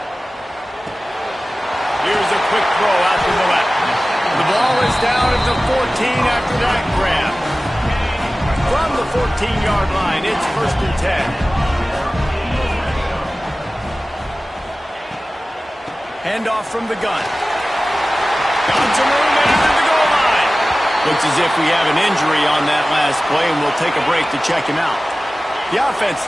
Here's a quick throw out to the left. The ball is down at the 14 after that grab. From the 14-yard line, it's first and 10. Handoff from the gun. Got some room into the goal line. Looks as if we have an injury on that last play, and we'll take a break to check him out. The offense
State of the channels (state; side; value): normal; both; correlation 0.97